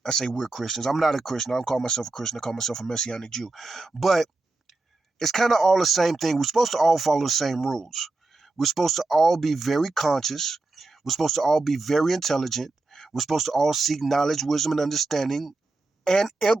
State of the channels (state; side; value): quieter; left; 3.3 dB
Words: I say we're Christians. I'm not a Christian. I don't call myself a Christian. I call myself a Messianic Jew. But it's kind of all the same thing. We're supposed to all follow the same rules. We're supposed to all be very conscious. We're supposed to all be very intelligent. We're supposed to all seek knowledge, wisdom, and understanding, and